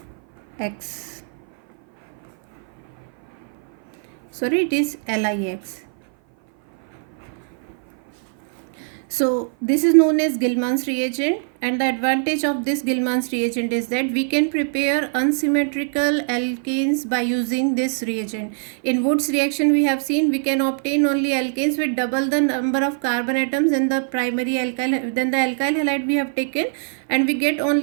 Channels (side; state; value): left; silent; 56 dB below the other